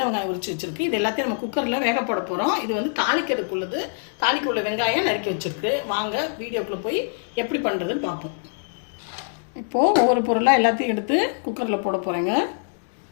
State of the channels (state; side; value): silent; right; digital silence